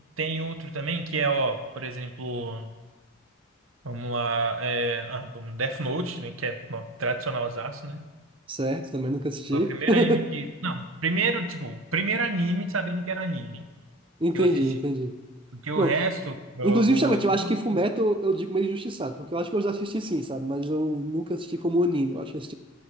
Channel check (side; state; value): both; normal; correlation 0.42